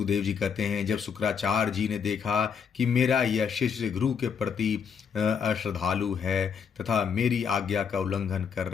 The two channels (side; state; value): right; quieter; 6.7 dB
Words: जी कहते हैं, जब शुक्राचार्य जी ने देखा कि मेरा यह शिष्य गुरु के प्रति अश्रद्धालु है तथा मेरी आज्ञा का उल्लंघन कर